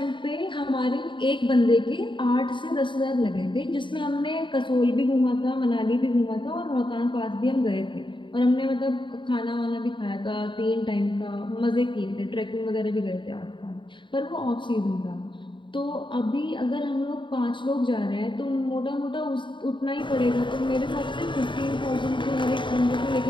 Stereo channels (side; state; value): right; late; 0.23 ms